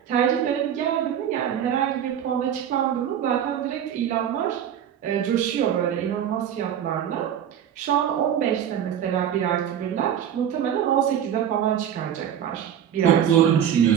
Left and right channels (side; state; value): left; quieter; 9.5 dB